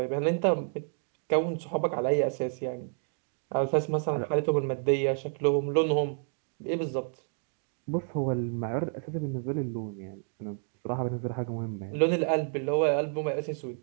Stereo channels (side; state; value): left; silent; 58 dB below the other